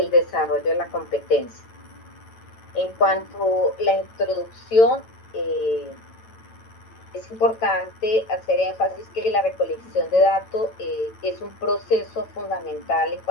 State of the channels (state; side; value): late; right; 9.0 ms